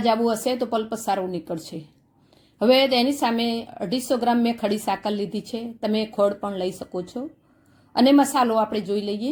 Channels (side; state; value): both; identical; correlation 1.00